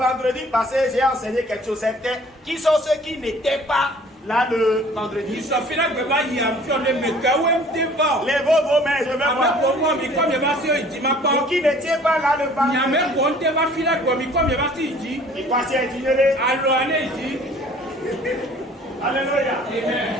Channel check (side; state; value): both; normal; correlation 0.52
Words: passé, j'ai enseigné quelque chose. C'était qui sont ceux qui n'étaient pas Là, le vendredi. Il s'en fait là que va y avoir des mecs où ils vont. Lèvez vos mains, je vais voir. Avec moi, mais comme il va se dire, ma part. Pour qui ne tient pas là le Il y a vendredi. même pour te va filer comme il comme il va se dire. Et quoi, c'est ignoré? Alors, allez, dit. Alléluia. Amen.